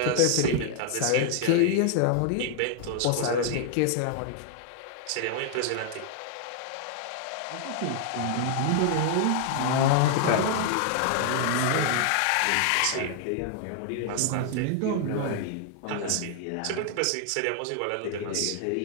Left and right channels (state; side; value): different; both; correlation 0.00